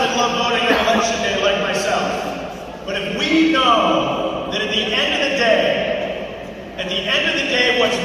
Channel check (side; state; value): both; identical; correlation 1.00